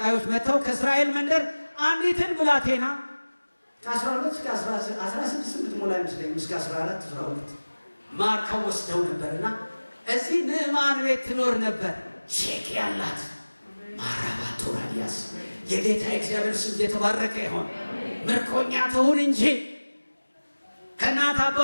መጥተው ከእስራኤል መንደር አንዲትን ብላቴና ከ12 እስከ 16 የምትሞላ አይመስለኝም፣ እስከ 14 12 ማርከው ወስደው ነበርና እዚህ ንዕማን ቤት ትኖር ነበር። ቼክ ያላት ማራባቶራዲያ ይፈወስ። የጌታ እግዚአብሔር ስም የተባረከ ይሁን። ምርኮኛ ትሁን እንጂ ከእናት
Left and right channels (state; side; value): inverted; both; correlation -1.00